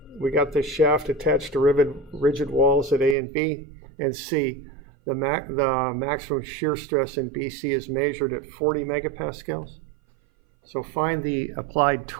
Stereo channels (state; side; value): drops out; left; at 3.2 s